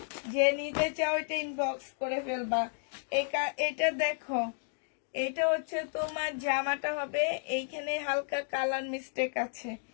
যে নিতে চাও এটা ইনবক্স করে ফেলবা। এটা দেখো, এটা হচ্ছে তোমার জামাটা হবে, এইখানে হালকা কালার মিস্টেক আছে।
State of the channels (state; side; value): silent; right; digital silence